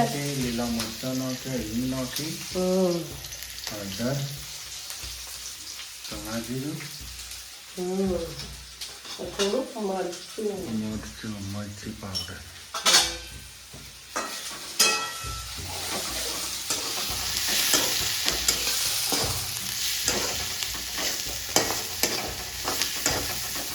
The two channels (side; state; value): both; identical; correlation 1.00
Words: લીલા મરચાં નાખે, હિંગ નાખી, હળદર, ચણા જીરું, થોડું મરચું, મરચી પાવડર.